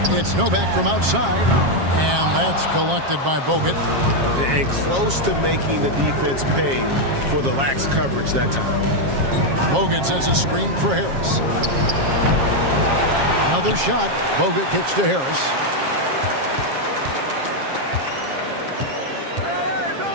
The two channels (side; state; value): left; late; 7.4 ms